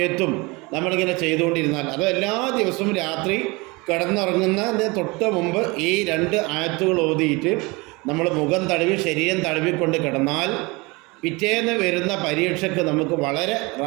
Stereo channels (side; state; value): left; quieter; 25.5 dB